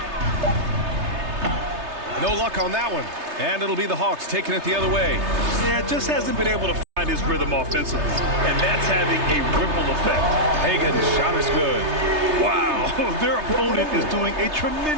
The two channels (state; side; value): late; left; 3.3 ms